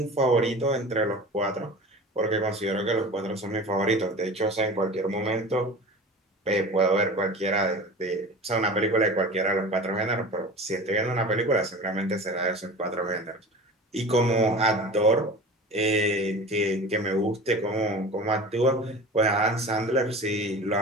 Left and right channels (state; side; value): normal; both; correlation 0.36